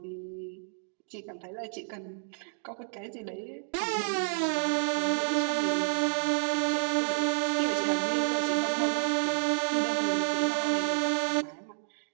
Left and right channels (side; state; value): left; silent; digital silence